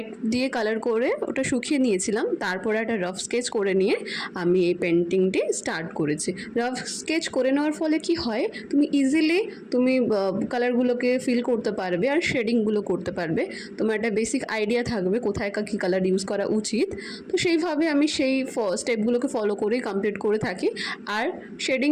দিয়ে কালার করে ওটা শুকিয়ে নিয়েছিলাম। তারপরে একটা রাফ স্কেচ করে নিয়ে আমি এই পেন্টিংটি স্টার্ট করেছি। রাফ স্কেচ করে নেওয়ার ফলে কি হয়, তুমি ইজিলি কালারগুলোকে ফিল করতে পারবে আর শেডিংগুলো করতে পারবে। তোমার একটা বেসিক আইডিয়া থাকবে কোথায় কী কালার ইউজ করা উচিত। তো সেইভাবে আমি সেই স্টেপগুলোকে ফলো করেই কমপ্লিট করে থাকি। আর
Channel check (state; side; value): identical; both; correlation 1.00